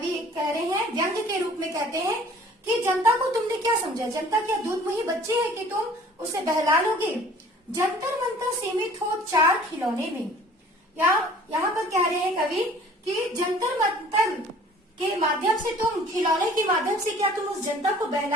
कह रहे हैं, व्यंग्य के रूप में कहते हैं कि जनता को तुमने क्या समझा, जनता क्या दूध मुही बच्चे है कि तुम उसे बहला लोगे? जंतर मंतर सीमित हो चार खिलौने में। यहाँ पर कह रहे हैं कवि कि जंतर मंतर के माध्यम से तुम, खिलौने के माध्यम से क्या तुम उस जनता को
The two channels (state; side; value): normal; both; correlation 0.51